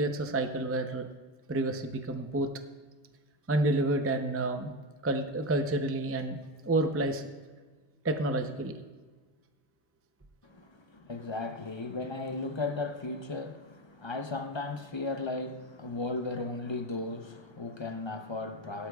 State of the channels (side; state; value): both; normal; correlation 0.16